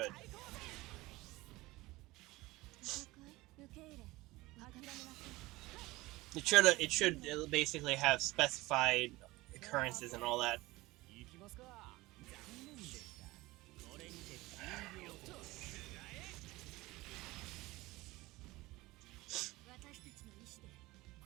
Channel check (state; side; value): quieter; left; 20.1 dB